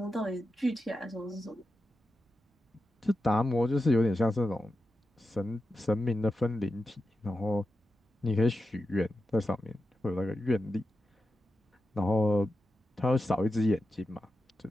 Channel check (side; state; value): both; normal; correlation 0.90